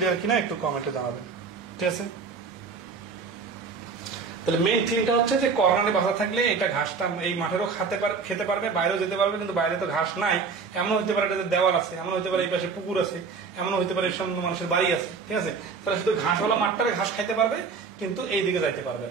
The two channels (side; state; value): left; quieter; 5.1 dB